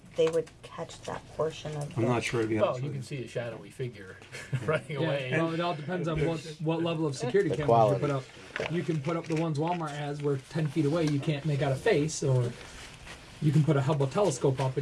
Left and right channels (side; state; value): both; identical; correlation 1.00